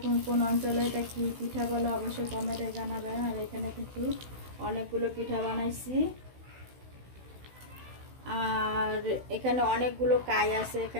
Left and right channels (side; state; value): left; late; 16 ms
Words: কোন কোন অঞ্চলে এটা কি পিঠা বলে অবশ্যই কমেন্টে জানাবেন। আর এখানে কিন্তু অনেকগুলো পিঠা বানাইছি। আর এখানে অনেকগুলো কাই আছে,